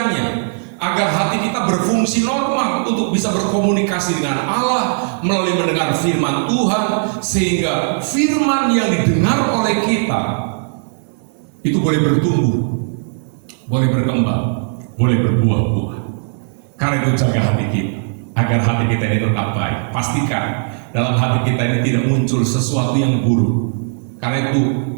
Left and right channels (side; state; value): left; silent; digital silence